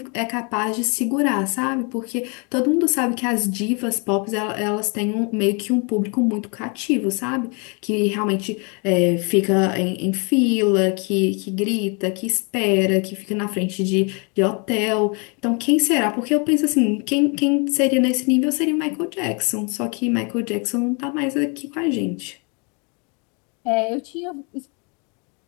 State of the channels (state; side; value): quieter; right; 33.8 dB